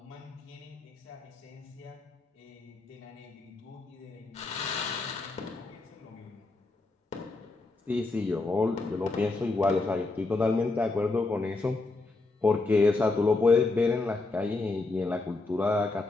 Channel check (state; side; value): quieter; right; 3.4 dB